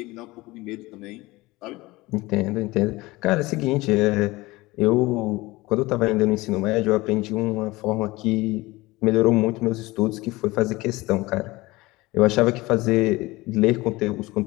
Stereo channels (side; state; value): right; quieter; 20.9 dB